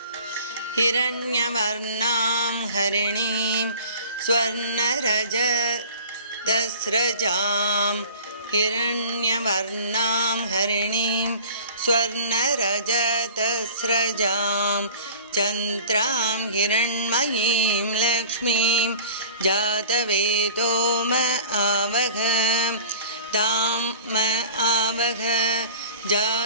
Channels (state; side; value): inverted; both; correlation -0.43